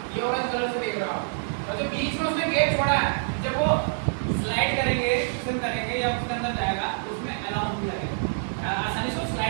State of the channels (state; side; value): silent; left; digital silence